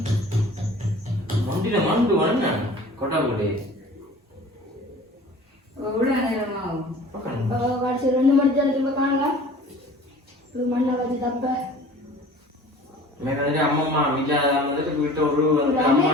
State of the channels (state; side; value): normal; both; correlation 0.45